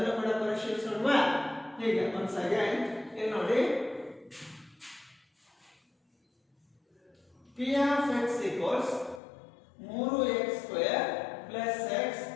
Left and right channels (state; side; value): drops out; right; at 9.2 s